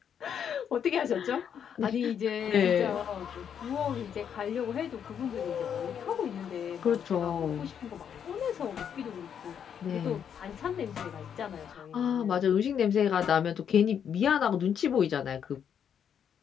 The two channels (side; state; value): right; quieter; 8.2 dB